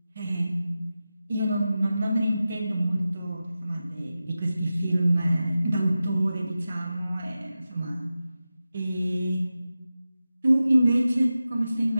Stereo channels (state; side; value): inverted; both; correlation -0.93